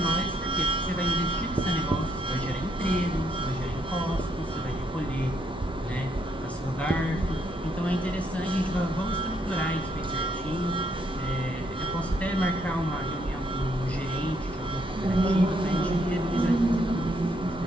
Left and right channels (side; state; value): both; normal; correlation 0.73